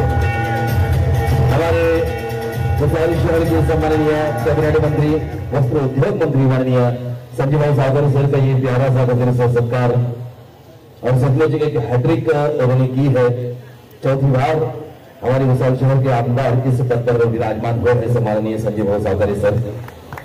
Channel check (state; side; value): identical; both; correlation 1.00